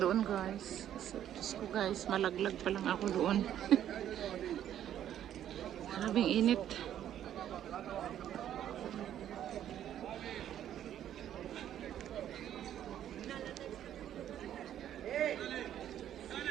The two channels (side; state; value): left; quieter; 10.8 dB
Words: doon, guys. Diyos ko, guys, malaglag pa lang ako doon. Grabing init.